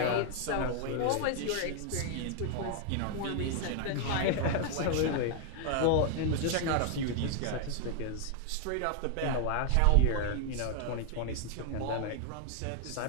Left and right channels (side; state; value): both; different; correlation 0.00